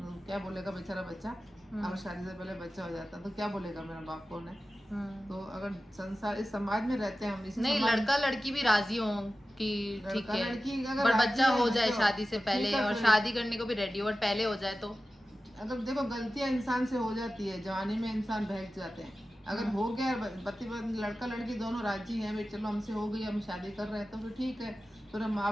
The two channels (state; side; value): normal; both; correlation 0.94